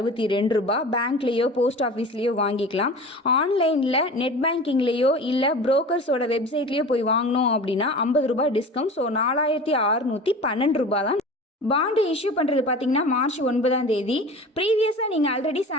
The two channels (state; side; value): normal; both; correlation 0.37